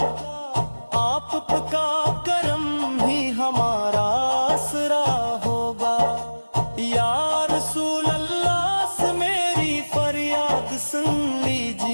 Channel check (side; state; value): both; inverted; correlation -1.00